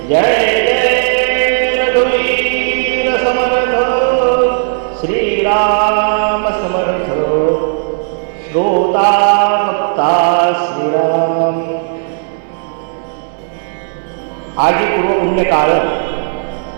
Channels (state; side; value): silent; left; digital silence